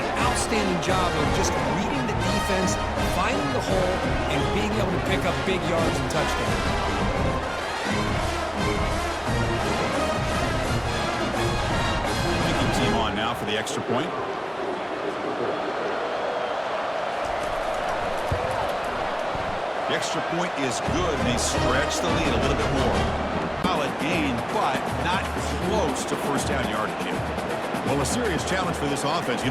outstanding job of just reading the defense, finding the hole, and being able to pick up big yards and touchdowns. Kicking team on now for the extra point. The extra point is good, and they stretch the lead a little bit more. Solid gain, but not close to first down yardage here. Well, a serious challenge for this offense. You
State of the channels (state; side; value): identical; both; correlation 1.00